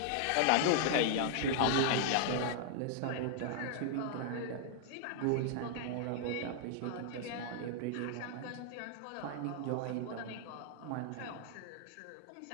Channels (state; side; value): different; both; correlation -0.01